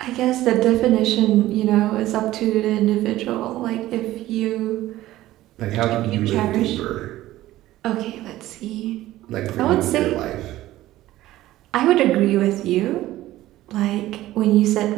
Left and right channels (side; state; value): left; quieter; 15.5 dB